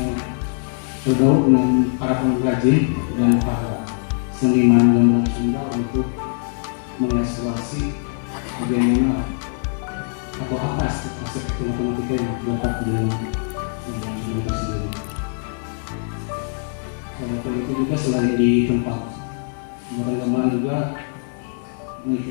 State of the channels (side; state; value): right; silent; 64 dB below the other